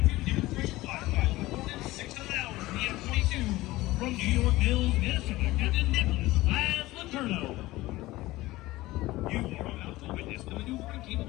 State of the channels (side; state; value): right; quieter; 18.4 dB